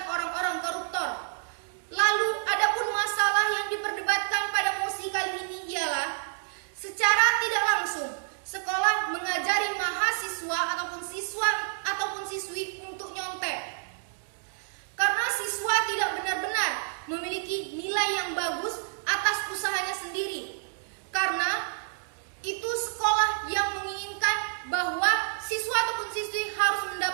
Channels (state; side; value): silent; left; digital silence